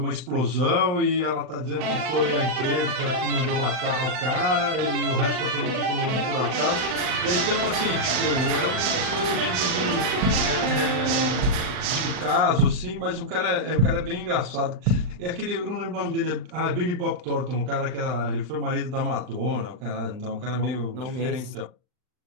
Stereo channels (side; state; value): left; late; 39 ms